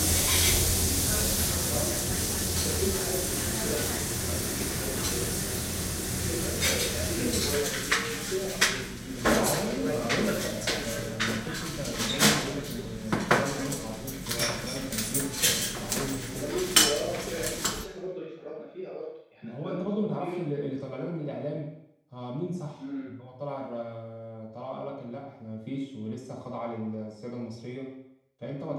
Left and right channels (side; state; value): both; identical; correlation 1.00